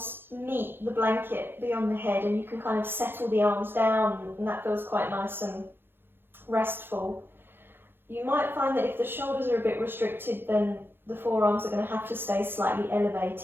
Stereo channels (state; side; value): late; left; 0.10 ms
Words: meet the blanket beyond the head, and you can kind of settle the arms down, and that feels quite nice and restful. You might find that if the shoulders are a bit restricted, then the forearms are going to have to stay slightly